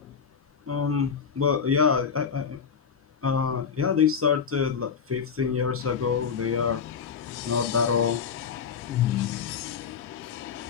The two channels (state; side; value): quieter; right; 6.6 dB